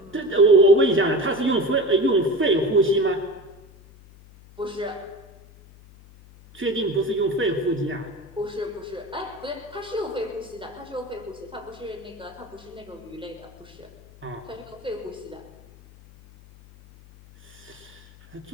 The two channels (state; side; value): noise; left; hum, 23 dB below the sound